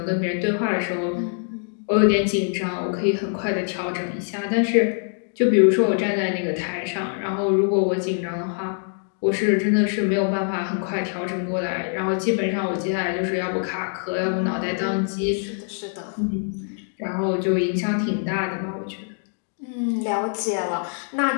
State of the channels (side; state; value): right; silent; 56 dB below the other